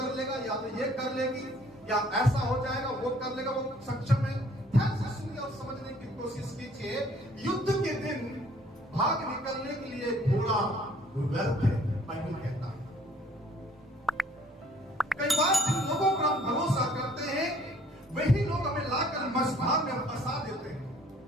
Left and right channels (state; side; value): normal; both; correlation 0.58